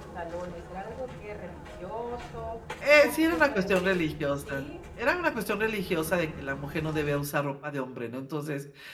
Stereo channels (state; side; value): identical; both; correlation 1.00